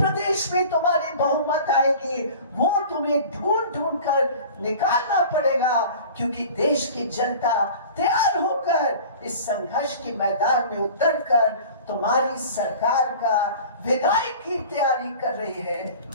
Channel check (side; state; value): both; inverted; correlation -0.41